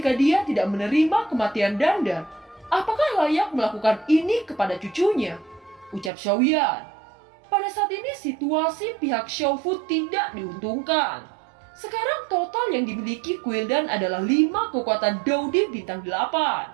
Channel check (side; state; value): left; drops out; at 6.1 s